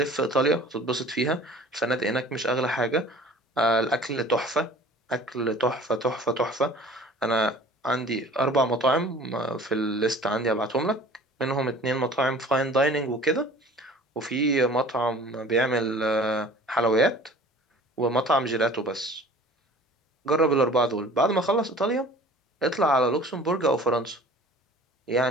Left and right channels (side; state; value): both; normal; correlation 0.46